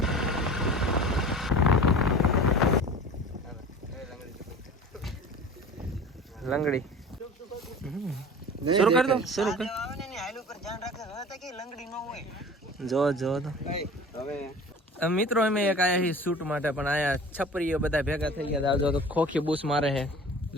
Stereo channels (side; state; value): both; normal; correlation 0.40